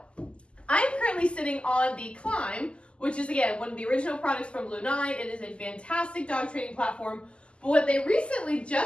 I'm currently sitting on the KLIMB, which is, again, one of the original products from Blue 9. It is a fantastic dog training platform. But what they recently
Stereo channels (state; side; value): late; right; 0.053 ms